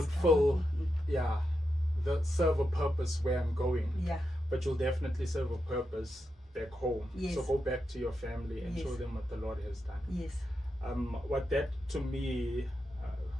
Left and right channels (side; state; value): both; normal; correlation 0.87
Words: serve a purpose where I'm going, Yeah. but you'll definitely serve a purpose back home. Yes. So go back to your family and Yes. show them what the Lord has done. Yes. What that to me,